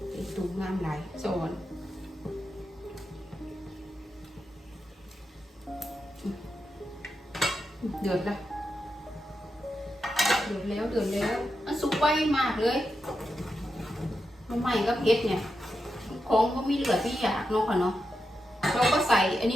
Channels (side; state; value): both; normal; correlation 0.88